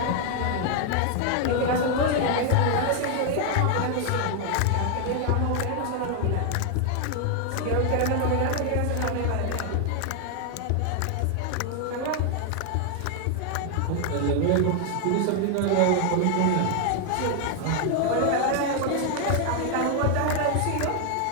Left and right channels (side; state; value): both; different; correlation 0.00